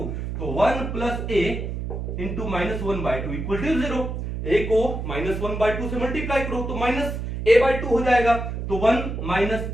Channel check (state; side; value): noise; right; hum, 5 dB below the sound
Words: तो 1 plus a into -1/2 equal to 0। a को -1/2 से मल्टीप्लाई करो तो -a/2 हो जाएगा, तो 1 -